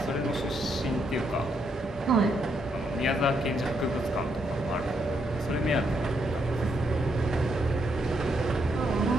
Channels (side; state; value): both; normal; correlation 0.77